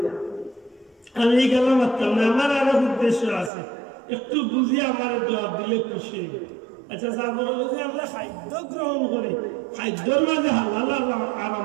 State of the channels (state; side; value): drops out; left; at 3.5 s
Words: আমি গেলাম মারতাম না, আমার আরো উদ্দেশ্য আছে, একটু বুঝি আমার জবাব দিলে খুশি। আচ্ছা আমরা খাদ্য গ্রহণ করি, খাদ্যর মাঝে হালাল